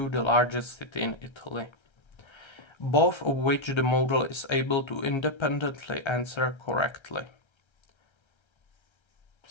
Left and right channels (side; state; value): right; late; 1.3 ms